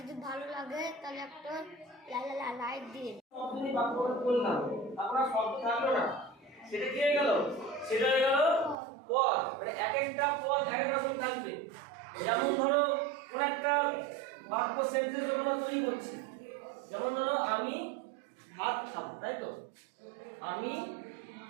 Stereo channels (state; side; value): drops out; left; at 8.8 s